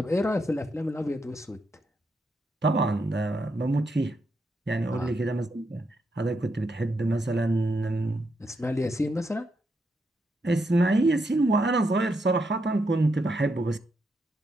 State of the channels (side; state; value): both; normal; correlation 0.81